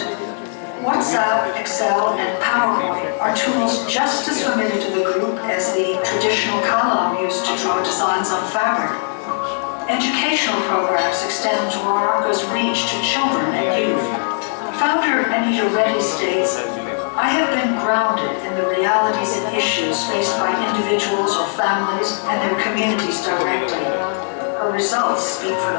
WhatsApp, Excel, and PowerPoint are tools just as familiar to the group as the traditional kalam used to draw designs on fabric. Educational programs extend Dwaraka's reach to children and youth. Founder Anita Reddy states, "I have been grounded in the realities and issues faced by individuals or families and their communities directly. Her results speak for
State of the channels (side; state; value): right; silent; 60 dB below the other